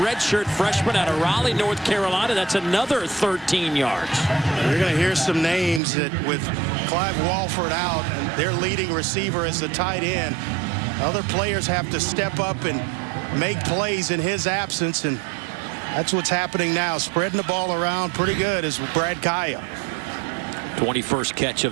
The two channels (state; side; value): drops out; left; at 5.8 s